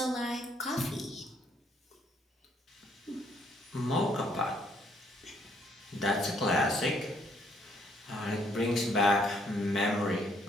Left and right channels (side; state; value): both; normal; correlation 0.68